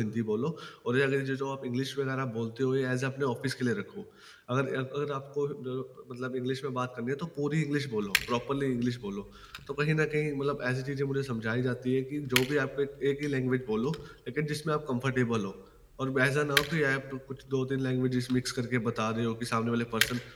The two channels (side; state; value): both; identical; correlation 1.00